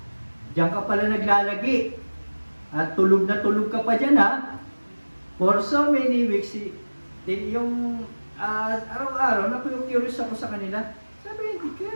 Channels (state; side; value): inverted; both; correlation -1.00